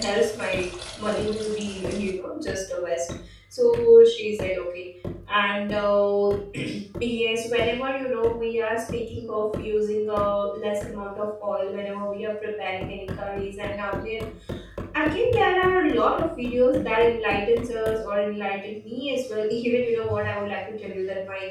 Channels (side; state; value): both; identical; correlation 1.00